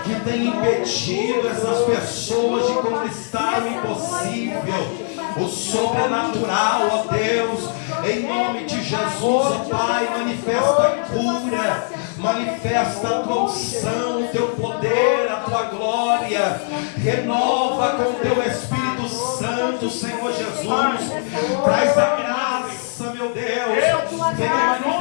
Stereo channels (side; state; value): right; silent; digital silence